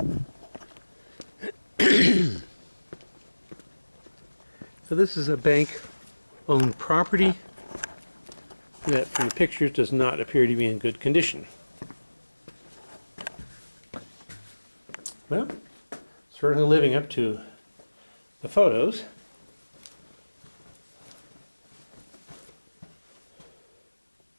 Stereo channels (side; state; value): both; inverted; correlation -1.00